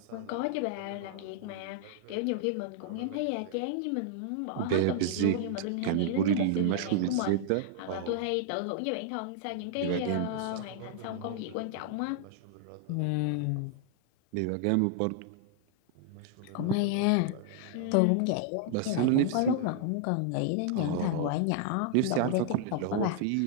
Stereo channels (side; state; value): both; different; correlation -0.01